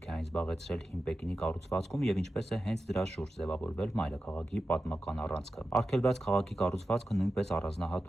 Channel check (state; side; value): normal; both; correlation 0.92